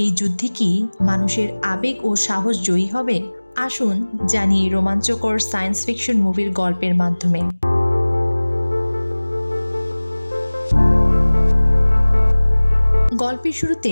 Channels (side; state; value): both; inverted; correlation -1.00